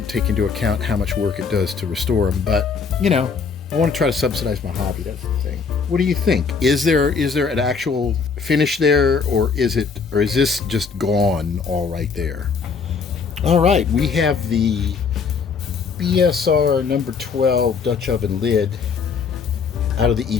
take into account how much work it does to restore them. But, you know, I want to try to subsidize my hobby. That's the thing. What do you think? Is there an actual finish there, or is this just gone all right there? All right, we have the BSR number 12 Dutch oven lid out of the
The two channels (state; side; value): quieter; right; 5.5 dB